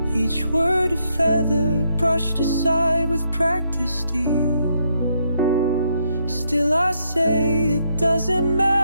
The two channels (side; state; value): both; inverted; correlation -0.77